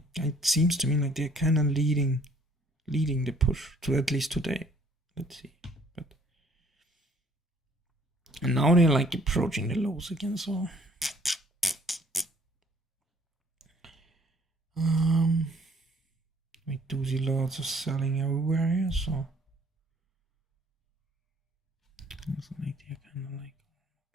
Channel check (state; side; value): normal; both; correlation 0.60